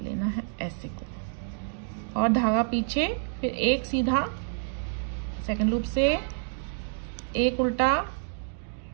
है ऐसे को, और धागा पीछे, फिर एक सीधा सेकंड लूप से, एक उल्टा,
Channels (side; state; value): left; silent; digital silence